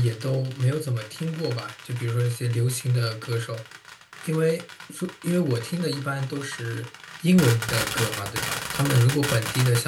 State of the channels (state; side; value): identical; both; correlation 1.00